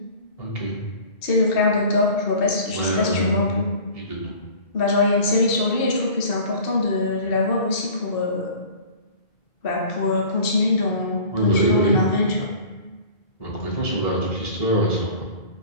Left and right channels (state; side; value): late; right; 2.6 ms